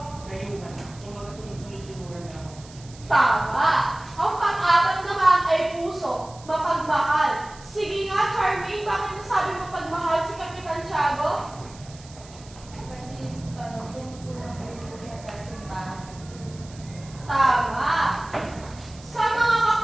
kayuhan. Kung magkasunod-sunod-sunuran niya ako. Tama. Ang pang-apat naman ay puso, mapagmahal. Sige nga, Charmaine, bakit nasabing mapagmahal si Kapitan Tiago? Kasi tumutulang po siya sa simbahan. Tama. Sa mga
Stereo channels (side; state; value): right; noise; hiss, 21 dB below the sound